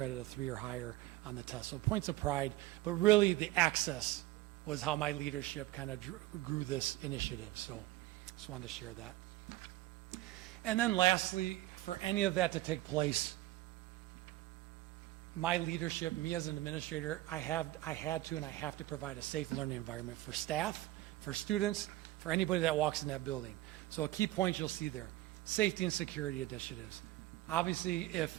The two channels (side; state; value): left; quieter; 17.0 dB